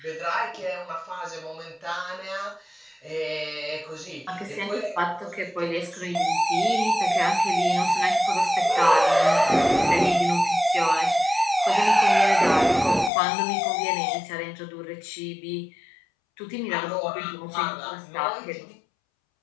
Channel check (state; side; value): drops out; right; at 13.1 s